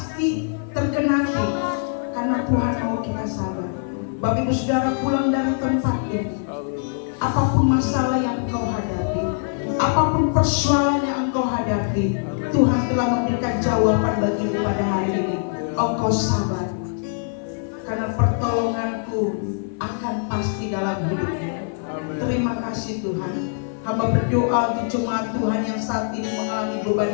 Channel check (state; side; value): silent; right; 55 dB below the other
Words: tergenapi karena Tuhan mau kita sabar. Bapak Ibu Saudara pulang dari tempat ini, apapun masalah yang engkau hadapi, apapun persoalan yang engkau hadapi, Tuhan telah memberikan jawaban bagimu pada hari ini. Engkau sabar karena pertolonganku akan pasti dalam hidupmu. Terima kasih Tuhan. Hamba berdoa untuk jemaat Tuhan yang saat ini mengalami